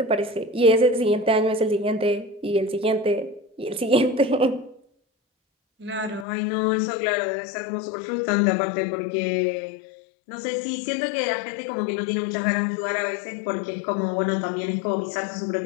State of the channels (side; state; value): right; drops out; at 6.2 s